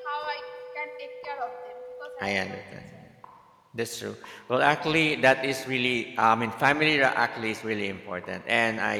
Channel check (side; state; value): both; identical; correlation 1.00